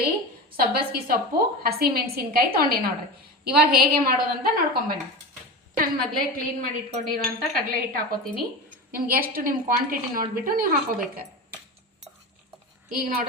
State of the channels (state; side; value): normal; both; correlation 0.26